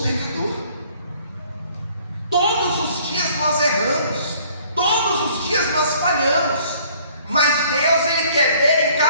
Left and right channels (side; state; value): both; inverted; correlation -0.58